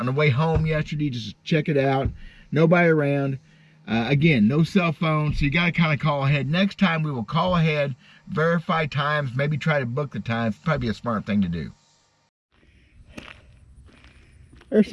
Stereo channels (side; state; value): both; identical; correlation 1.00